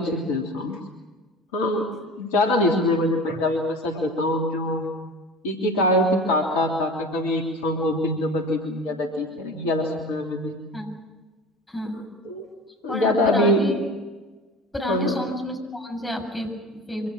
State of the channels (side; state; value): both; normal; correlation 0.36